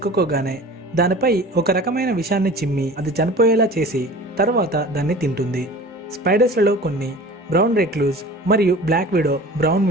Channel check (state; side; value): normal; both; correlation 0.41